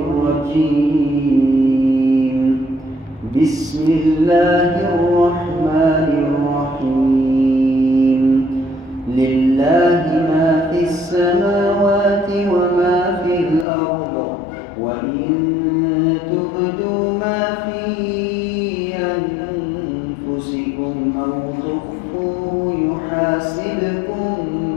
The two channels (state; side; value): drops out; right; at 13.7 s